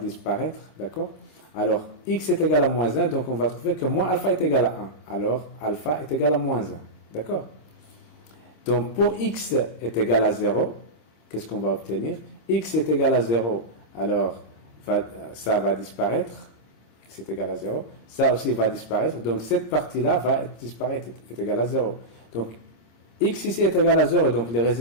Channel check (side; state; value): right; late; 26 ms